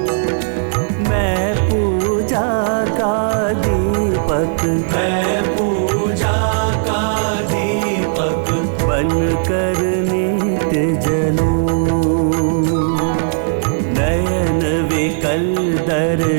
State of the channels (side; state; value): left; silent; 63 dB below the other